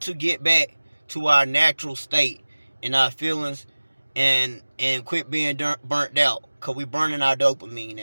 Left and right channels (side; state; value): both; inverted; correlation -1.00